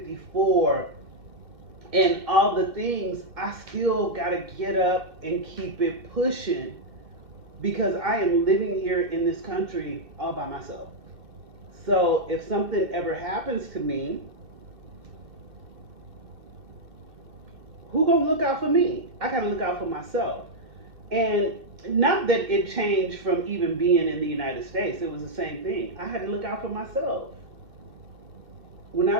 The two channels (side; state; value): left; late; 2.1 ms